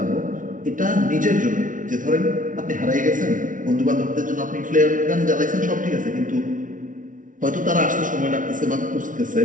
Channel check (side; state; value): left; late; 0.38 ms